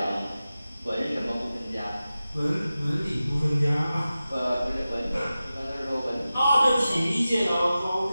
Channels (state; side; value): inverted; both; correlation -0.95